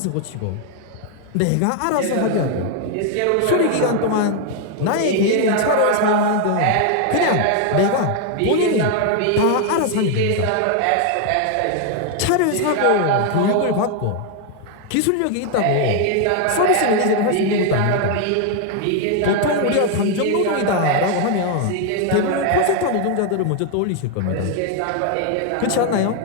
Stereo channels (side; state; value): both; different; correlation 0.00